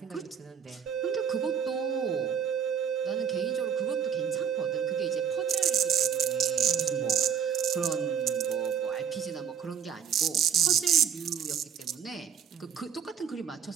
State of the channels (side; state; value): left; quieter; 8.0 dB